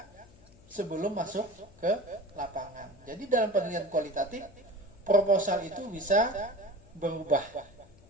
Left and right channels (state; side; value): noise; left; hum, 25 dB below the sound